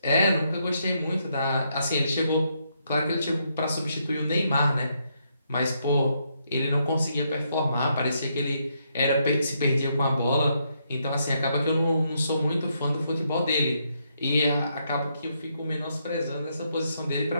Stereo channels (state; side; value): inverted; both; correlation -0.77